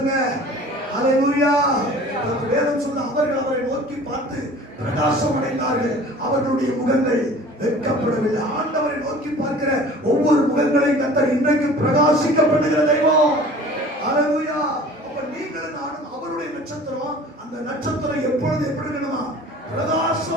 அல்லேலூயா. வேதம் சொல்ல அவர்கள் அவரை நோக்கி பார்த்து பிரகாசம் அடைந்தார்கள், அவர்களுடைய முகங்கள் வெட்கப்படவில்லை. ஆண்டவரை நோக்கி பார்க்கிற ஒவ்வொரு முகங்களையும் கர்த்தர் இன்றைக்கு பிரகாசிக்க பண்ணுகிற தெய்வம். அல்லேலூயா. அப்ப நீங்களும் நானும் அவருடைய நட்சத்திரம். அந்த நட்சத்திரம் எப்பொழுது எப்படி இருக்கணுமா?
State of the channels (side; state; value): both; normal; correlation 0.45